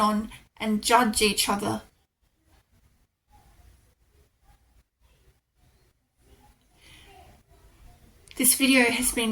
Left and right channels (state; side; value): identical; both; correlation 1.00